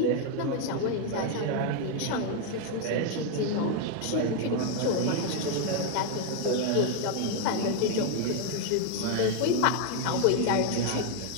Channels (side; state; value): both; different; correlation 0.01